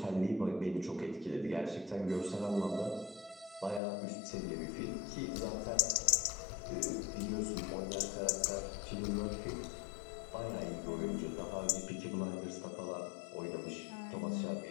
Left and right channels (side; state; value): right; drops out; at 3.8 s